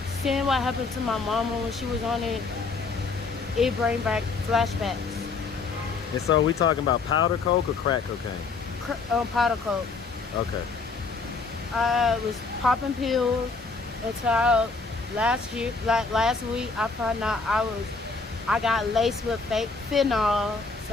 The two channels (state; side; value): quieter; right; 4.3 dB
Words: seeing what happened to my mama when she was on it, it bring back flashbacks. And so we talking about powder coke or crack cocaine? Powder coke. Okay. I was popping pills until last week I found out I got laced with fake fentanyl,